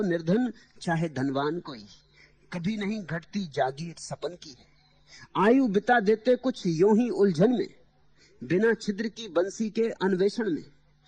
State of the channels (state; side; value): identical; both; correlation 1.00